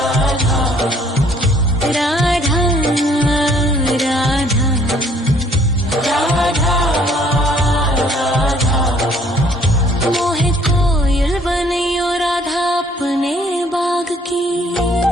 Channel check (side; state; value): both; normal; correlation 0.61